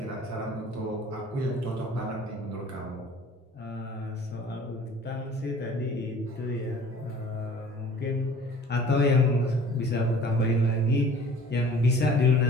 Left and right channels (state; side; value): normal; both; correlation 0.48